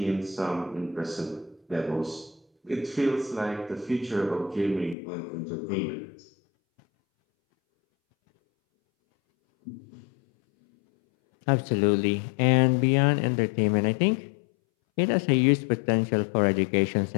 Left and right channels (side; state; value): right; drops out; at 5.0 s